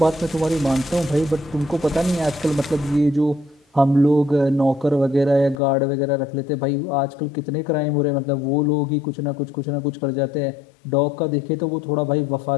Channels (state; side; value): drops out; right; at 5.6 s